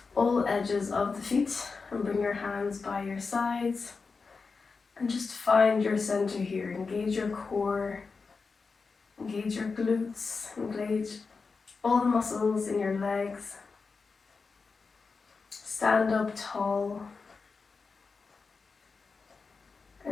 all edges of the feet and bring your hands by your sides and just find your center here. Engage your core, engage your glutes, engage all the muscles in your legs. Stand up tall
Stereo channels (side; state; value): right; quieter; 4.6 dB